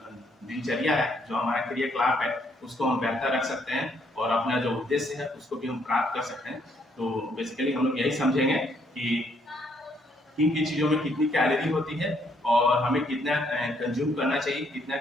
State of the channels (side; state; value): both; normal; correlation 0.70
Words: दिनचर्या है, जो हमारा क्रियाकलाप है, उसको हम बेहतर रख सकते हैं और अपना जो उद्देश्य है उसको भी हम प्राप्त कर सकते हैं। तो बेसिकली हम लोग यही समझेंगे कि किन किन चीज़ों में कितनी कैलोरी होती है और हमें कितना कंज्यूम करना चाहिए, कितना